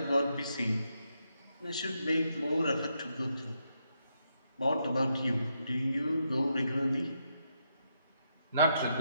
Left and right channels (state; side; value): inverted; both; correlation -0.81